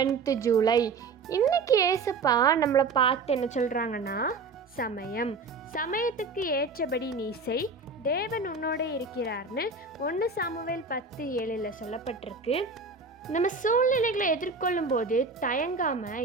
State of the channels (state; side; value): quieter; left; 4.2 dB